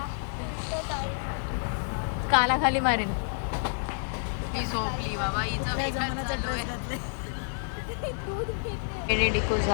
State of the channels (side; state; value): right; silent; digital silence